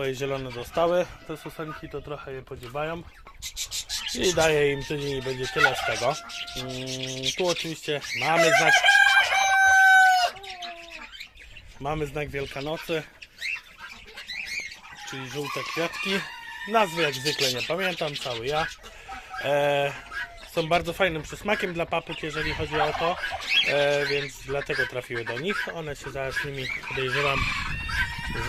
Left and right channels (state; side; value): identical; both; correlation 1.00